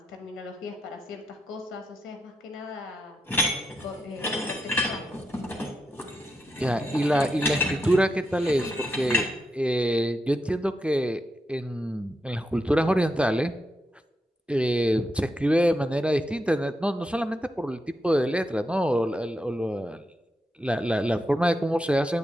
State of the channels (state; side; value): normal; both; correlation 0.85